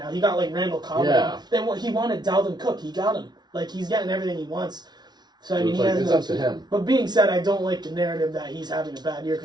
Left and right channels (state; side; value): late; left; 0.20 ms